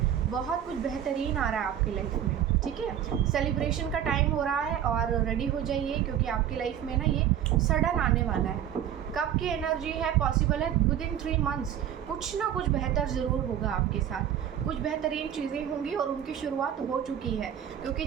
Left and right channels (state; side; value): quieter; left; 10.1 dB